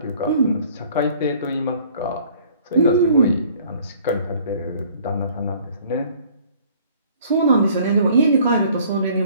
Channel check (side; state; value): both; inverted; correlation -0.55